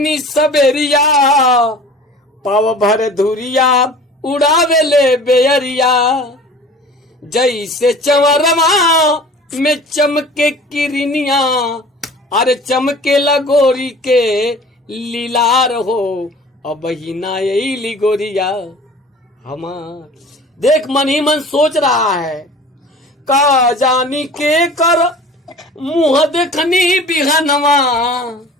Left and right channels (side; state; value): both; normal; correlation 0.43